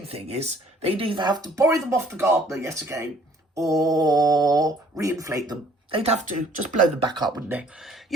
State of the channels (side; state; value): both; normal; correlation 0.58